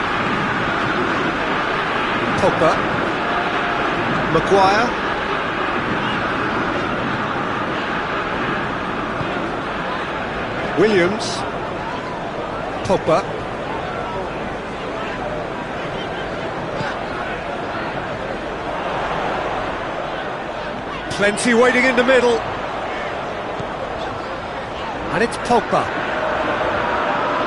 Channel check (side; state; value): both; identical; correlation 1.00